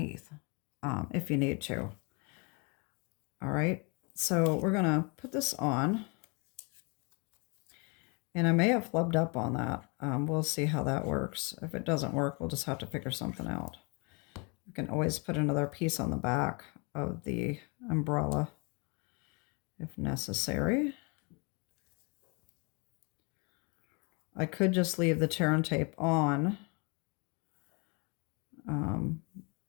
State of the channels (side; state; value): right; quieter; 32.2 dB